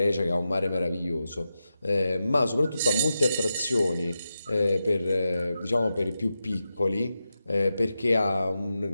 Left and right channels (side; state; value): both; inverted; correlation -0.90